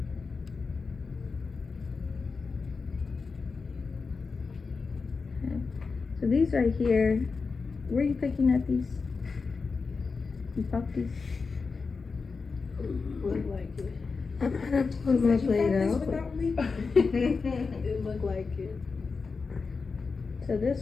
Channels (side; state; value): right; quieter; 4.7 dB